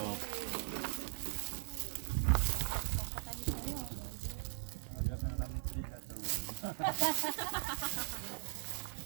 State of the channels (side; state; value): left; silent; digital silence